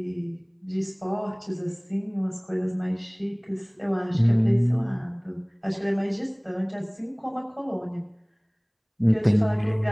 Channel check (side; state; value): both; identical; correlation 1.00